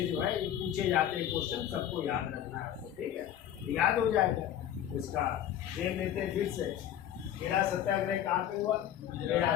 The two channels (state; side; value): quieter; right; 10.8 dB